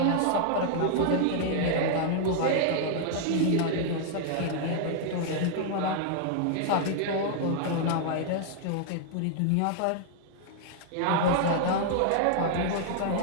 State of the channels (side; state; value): both; different; correlation -0.01